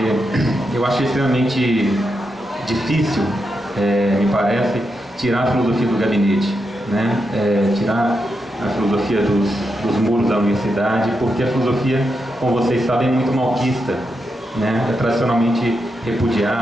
eu acho extremamente difícil, me parece, tirar a filosofia do gabinete, tirar a filosofia dos muros da universidade, porque a filosofia, como vocês sabem, é muito malquista, é tradicionalmente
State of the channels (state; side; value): normal; both; correlation 0.85